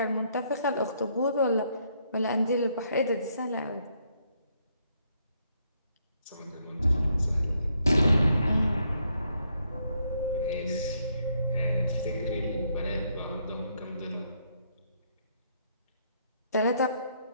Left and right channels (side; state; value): both; inverted; correlation -0.73